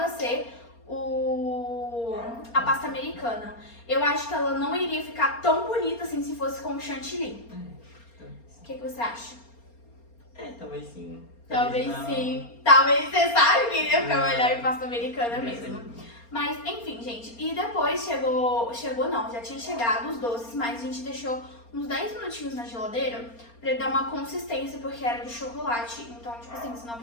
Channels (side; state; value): right; late; 4.3 ms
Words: ser a pasta americana. Eu acho que ela não iria ficar tão bonita assim se fosse com chantilly. O que você acha? Talvez sim. Talvez não. sim. Talvez você sabe que iria ficar melhor em pasta americana mesmo. Mas, enfim, gente. E depois chegou não, já tinha chegado os doces, mas a gente deixou uns 10 minutinhos na geladeira pra ele dar uma consistência, porque era de chocolate. Então, tipo assim, senão